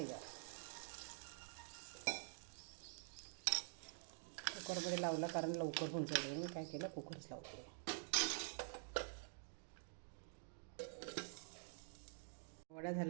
कुकरमध्ये लावला कारण लवकर होऊन जाईल. मी काय केलं कुकरच लावते. वडा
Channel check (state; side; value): silent; left; digital silence